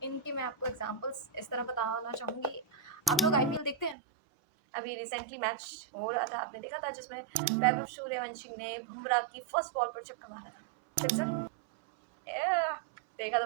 इनके मैं आपको एग्जांपल्स इस तरह बताना चाहूँगी। आप लोग आईपीएल देखते हैं? अभी रिसेंटली मैच हो रहा था, आपने देखा था, जिसमें वैभव सूर्यवंशी ने बुमराह की फर्स्ट बॉल पर छक्का मारा था। सिक्सर? देखा तो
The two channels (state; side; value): drops out; left; at 4.0 s